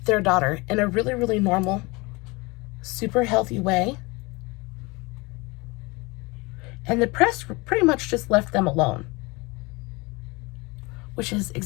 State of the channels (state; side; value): quieter; right; 25.5 dB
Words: their daughter in a really, really normal, super healthy way. And the press pretty much just left them alone, which is